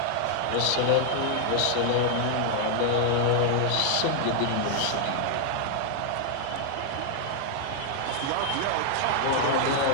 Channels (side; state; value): both; different; correlation 0.00